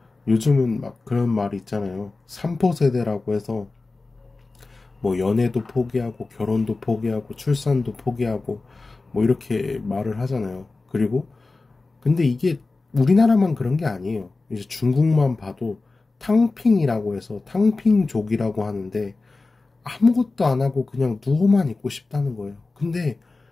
요즘은 막 그런 말이 있잖아요. 3포 세대라고 해서 뭐 연애도 포기하고 결혼도 포기하고 출산도 포기하고 뭐 이렇게 말을 하잖아요. 그리고 근데 이게 우리나라만 그런 게 아니에요. 이제 중국만 봐도 탕핑이라고 해서 탕핑족이라고 하는데, 아무것도 안 하고 그냥 누워만 있고 싶다는 거예요. 근데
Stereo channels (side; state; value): right; quieter; 3.6 dB